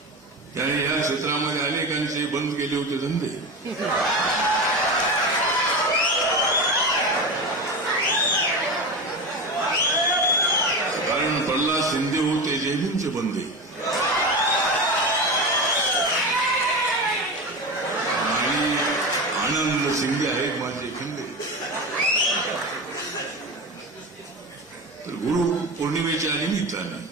त्याने या क्षेत्रामध्ये अनेकांचे बंद केले होते धंदे. कारण प्रल्हाद शिंदे होते जयभीमचे बंदे आणि आनंद शिंदे आहेत माझे खंदे. तर गुरु पौर्णिमेच्या निमित्ताने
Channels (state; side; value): normal; both; correlation 0.23